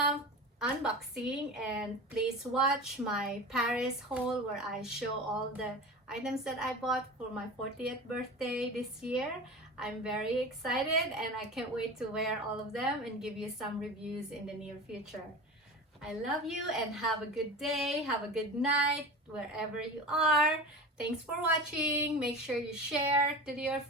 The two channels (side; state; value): both; normal; correlation 0.31